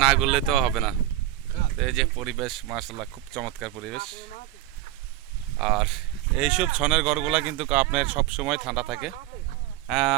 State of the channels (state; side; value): quieter; left; 14.0 dB